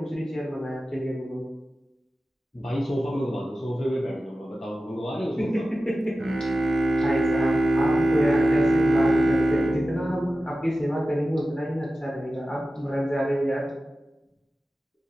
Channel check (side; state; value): both; normal; correlation 0.94